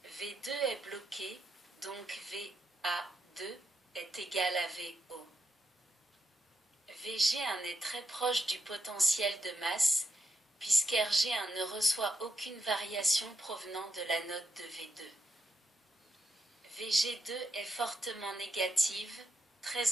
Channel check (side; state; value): both; normal; correlation 0.82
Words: V2 est bloqué, donc VA2 est égal à VO. VG1 est très proche du potentiel de masse, puisqu'RG1 ne reçoit aucune variation provenant de la note de V2. VG2 est fortement négative,